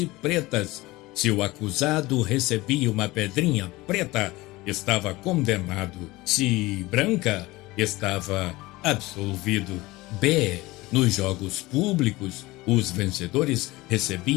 pretas. Se o acusado recebia uma pedrinha preta, estava condenado. Se branca, estava absolvido. B. Nos jogos públicos, os vencedores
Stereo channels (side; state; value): right; quieter; 20.3 dB